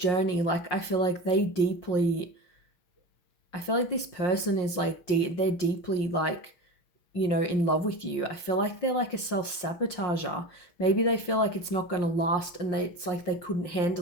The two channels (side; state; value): right; late; 5.6 ms